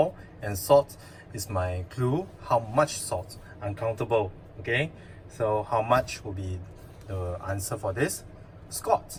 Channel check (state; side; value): identical; both; correlation 1.00